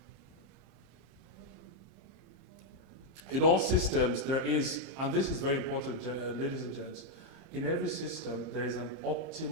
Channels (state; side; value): late; left; 30 ms